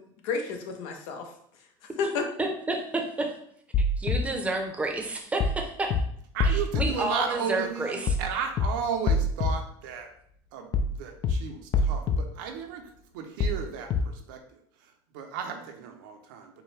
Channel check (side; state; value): both; normal; correlation 0.40